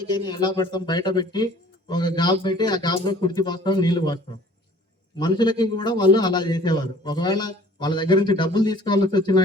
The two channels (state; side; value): normal; both; correlation 0.51